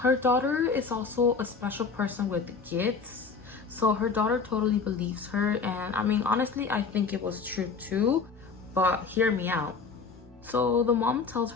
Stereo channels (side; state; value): right; quieter; 4.9 dB